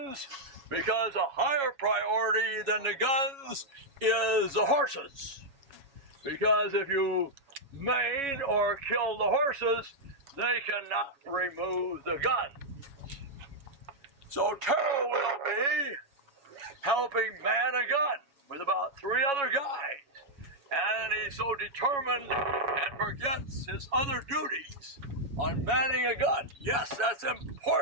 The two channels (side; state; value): left; late; 7.1 ms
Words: because a higher priority than the guns is the horses. Because if you maim or kill the horses, they cannot remove the gun. So Terrell will be helping man a gun with about 3 other guys. And he's so determined and forgets his other duties on manning a gun. Yes, that's